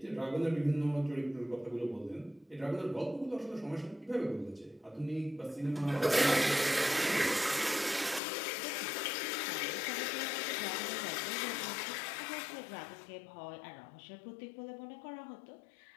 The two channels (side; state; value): right; drops out; at 8.2 s